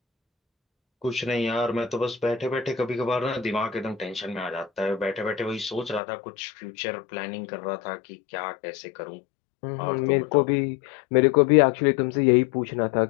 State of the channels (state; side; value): drops out; right; at 6.0 s